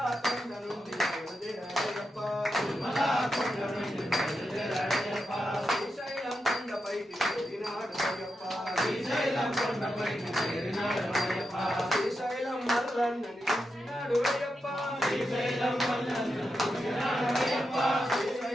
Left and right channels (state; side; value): normal; both; correlation 0.87